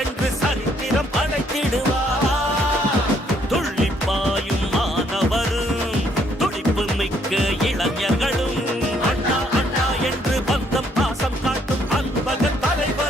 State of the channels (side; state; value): both; normal; correlation 0.68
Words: சரித்திரம் படைத்திடுவார். துள்ளிப்பாயும் மாணவரும் துடிப்பு மிக்க இளைஞர்களும் அண்ணா அண்ணா என்று பந்தம் பாசம் காட்டும் அன்பக